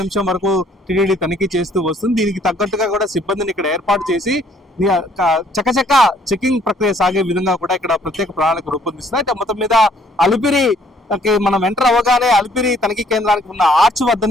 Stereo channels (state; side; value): normal; both; correlation 0.62